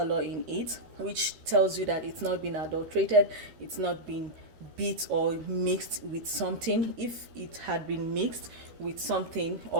in it, which tells you that it's not been adulterated, it's not been beat or mixed with something. If it had been mixed with something,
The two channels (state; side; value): late; left; 13 ms